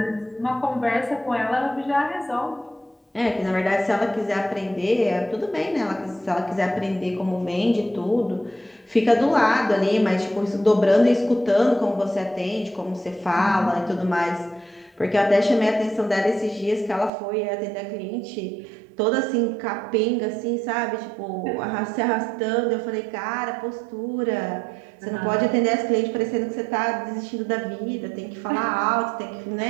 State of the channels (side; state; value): left; drops out; at 17.1 s